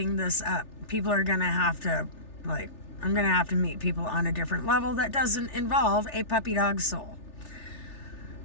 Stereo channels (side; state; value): right; late; 3.4 ms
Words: this up. People are going to have to, I'm going to have to meet people on a different level that doesn't involve a puppy dog soul.